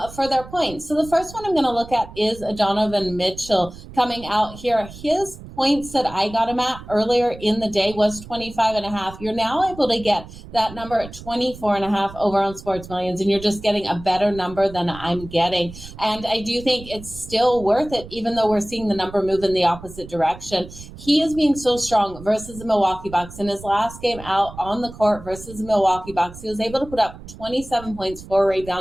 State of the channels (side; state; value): right; noise; rumble, 15 dB below the sound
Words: for their points. So the first one I'm going to look at is Donovan Mitchell coming out here. His points that I got him at earlier in the day was 25.5. You're now able to get that number at 24.5 over on Sports Millions, and you're just getting a better number than I'm getting. And I do think it's still worth it, even though we're seeing the number move in the opposite direction. He is being so strong versus the Milwaukee Bucks. In his last game out on the court versus the Milwaukee Bucks, he was able to put up 27 points, 4